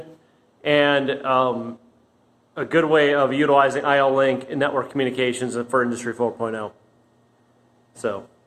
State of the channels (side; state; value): both; identical; correlation 1.00